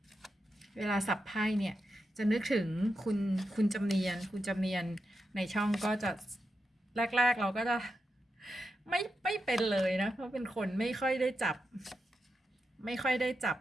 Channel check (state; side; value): normal; both; correlation 0.87